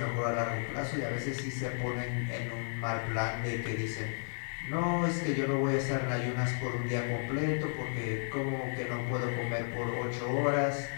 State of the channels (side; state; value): right; silent; digital silence